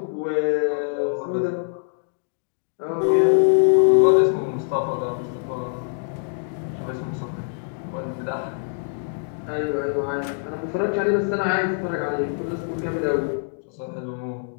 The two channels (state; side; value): silent; right; digital silence